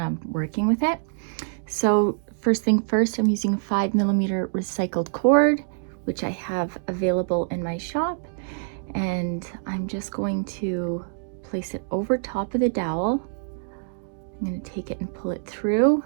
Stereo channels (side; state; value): left; silent; digital silence